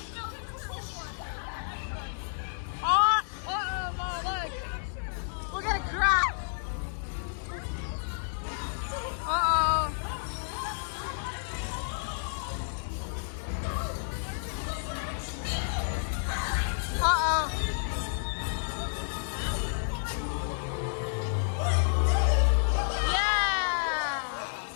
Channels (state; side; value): silent; right; digital silence